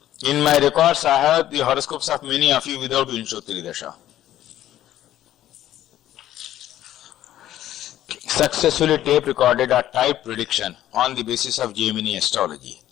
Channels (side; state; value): right; quieter; 12.7 dB